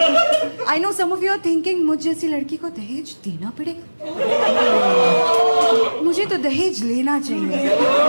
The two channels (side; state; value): both; inverted; correlation -1.00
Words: I know some of you are thinking मुझ जैसी लड़की को दहेज देना पड़ेगा, मुझे तो दहेज लेना चाहिए,